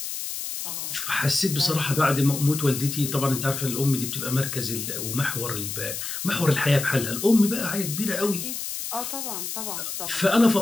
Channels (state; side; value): noise; left; hiss, 5 dB below the sound